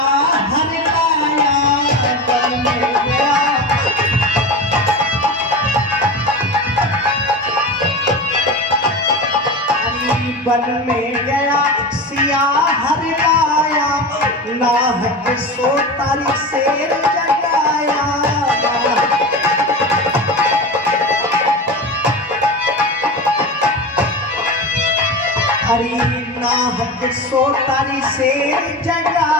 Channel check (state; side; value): normal; both; correlation 0.26